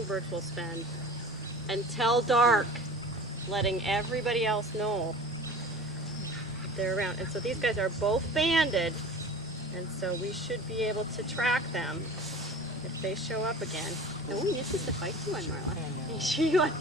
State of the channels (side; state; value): both; normal; correlation 0.39